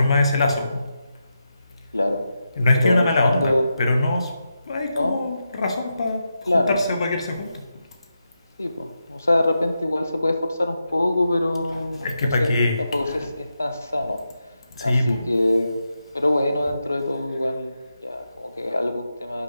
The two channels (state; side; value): inverted; both; correlation -0.87